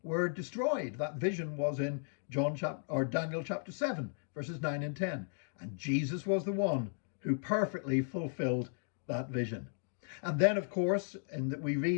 were destroyed. That vision was in Daniel chapter 7, verses 9 and 10. And Jesus was the one who perfectly fulfilled that vision. And then, of course, we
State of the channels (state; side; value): silent; right; 54 dB below the other